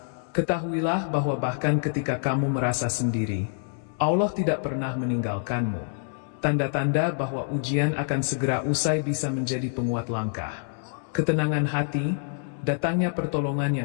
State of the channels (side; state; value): right; silent; 61 dB below the other